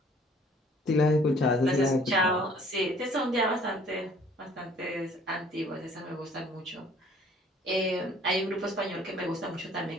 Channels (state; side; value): normal; both; correlation 0.56